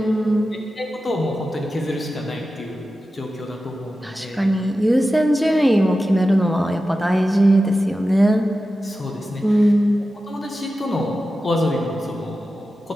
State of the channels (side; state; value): both; normal; correlation 0.93